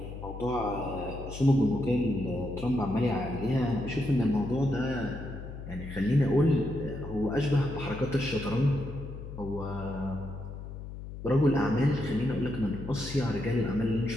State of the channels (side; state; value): left; noise; hum, 10 dB below the sound